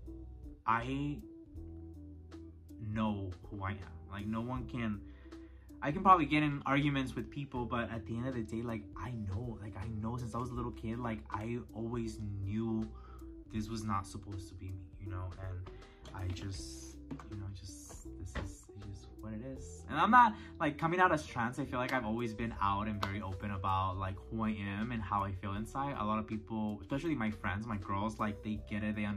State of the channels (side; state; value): both; identical; correlation 1.00